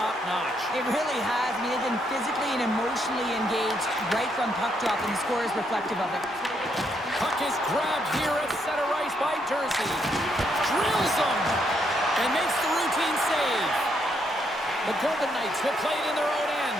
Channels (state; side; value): normal; both; correlation 0.75